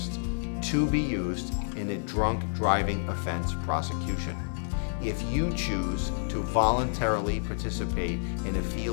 to be used in a drunk driving offense prosecution. If you choose to voluntarily participate in a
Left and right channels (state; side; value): silent; right; digital silence